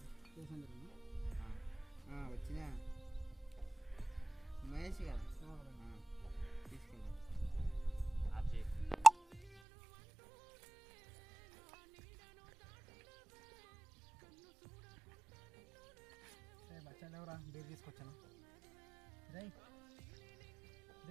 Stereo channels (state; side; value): drops out; left; at 9.5 s